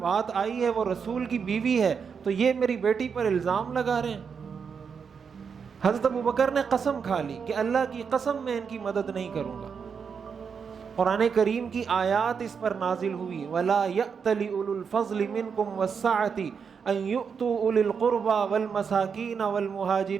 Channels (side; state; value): left; quieter; 6.3 dB